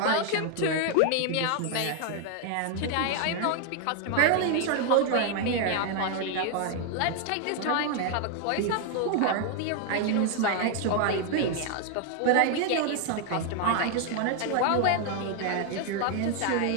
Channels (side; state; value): both; different; correlation 0.00